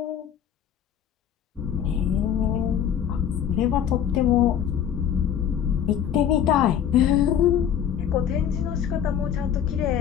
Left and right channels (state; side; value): quieter; right; 9.1 dB